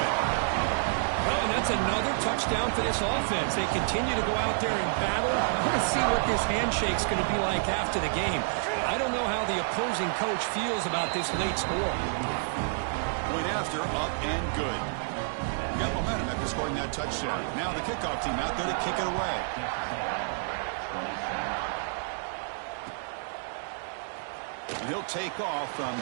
Well, and that's another touchdown for this offense. They continue to go out there and battle. I'm going to see what this handshake's going to be like after the game. I don't know how the opposing coach feels about this late score. Point after, up and good. Got momentum after scoring that touchdown. Now the kickoff team out there to kick it away. And he'll take off from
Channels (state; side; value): silent; left; digital silence